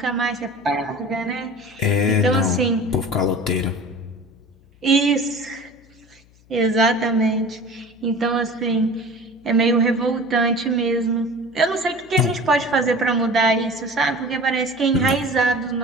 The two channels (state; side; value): noise; left; hum, 29 dB below the sound